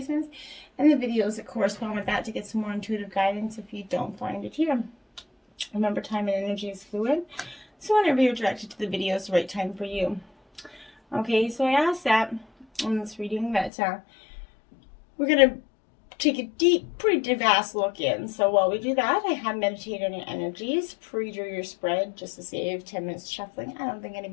and the videos that correspond with that to get some more intuitive guidance if you don't find it here. Remember, time and energy is fluid, so whenever you're directed to the video, it's the right time for you. Okay, so I asked that in this reading that we're going to take a deep, pretty vast look in. So while we do that, I have meditated on your energies, pre-drew your spread just to save 10 minutes shuffling. I don't think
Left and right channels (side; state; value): right; drops out; at 13.7 s